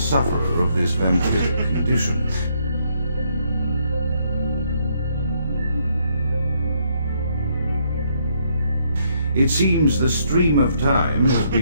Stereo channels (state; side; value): inverted; both; correlation -0.72